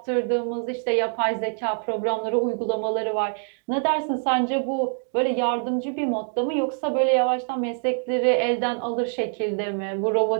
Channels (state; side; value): silent; left; digital silence